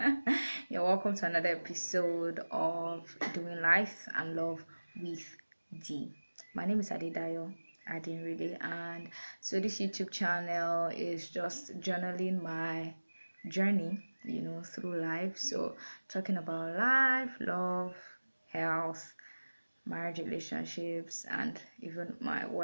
You're welcome to another episode of Doing Life and Love with D. My name is Adedayo Adinrede, and so this YouTube channel is just journaling my journey, through life. So talking about life, love, health, marriage, relationships, and even my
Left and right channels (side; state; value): both; inverted; correlation -1.00